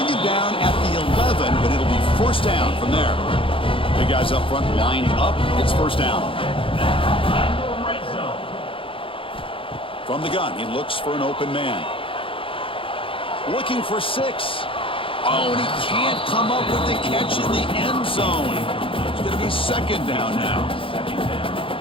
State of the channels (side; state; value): right; late; 0.26 ms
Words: it down at the 11, but it'll be first down from there. Big guys up front lined up. It's first down. From the gun, he looks for an open man. Looking for 6. Oh, and he can't come up with the catch in the end zone. It's going to be second down now.